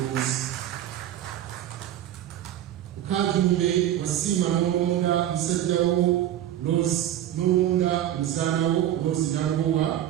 Kajumbe wasiima n'olonda musajjawo n'olonda muzaanawo Rose Nagowa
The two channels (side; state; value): left; quieter; 11.8 dB